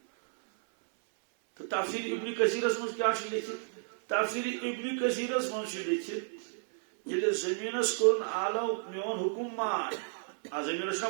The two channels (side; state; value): left; silent; 56 dB below the other